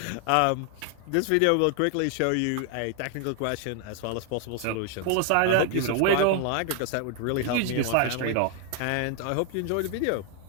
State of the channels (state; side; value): different; both; correlation 0.00